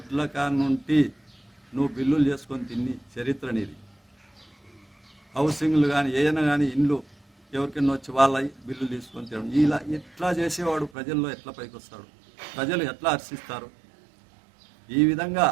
కానుంటి నువ్వు బిల్లులు చేసుకొని తిని చరిత్ర నీది. హౌసింగ్లు కానీ ఏదైనా కానీ ఇండ్లు ఎవరికైనా వచ్చి వాళ్ళ బిల్లులు తీసుకొని తినడం, ఇలా ఎట్లా చేసేవాడు ప్రజల్లో ఎట్లా పైకి వస్తాడు, ప్రజలు ఎట్లా హర్షిస్తారు? ఈ విధంగా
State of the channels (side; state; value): left; drops out; at 10.9 s